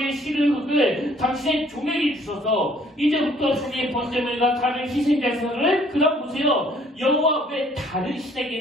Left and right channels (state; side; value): normal; both; correlation 0.60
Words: 실을 흙을 당신의 종에게 주셔서 이제부터 종의 번제물과 다른 희생제사를 그다음 보세요. 여호와 왜 다른